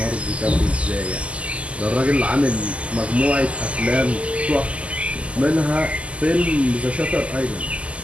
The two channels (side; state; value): left; late; 0.060 ms